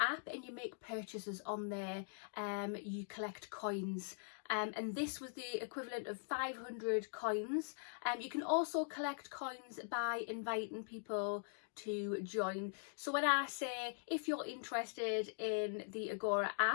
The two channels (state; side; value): silent; right; digital silence